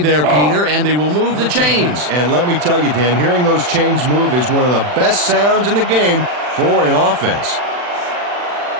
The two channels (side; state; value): left; late; 40 ms